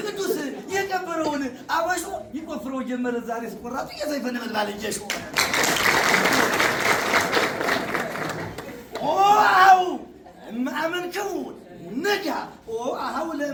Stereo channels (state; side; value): identical; both; correlation 1.00